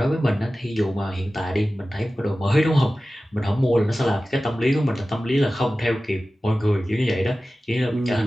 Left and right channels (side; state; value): both; normal; correlation 0.96